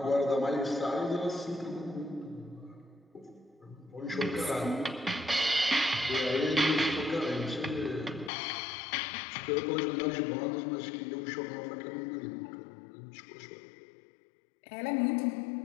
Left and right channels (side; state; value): right; drops out; at 8.3 s